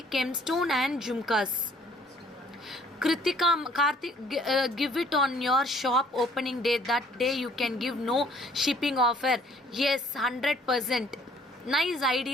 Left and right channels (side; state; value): both; normal; correlation 0.59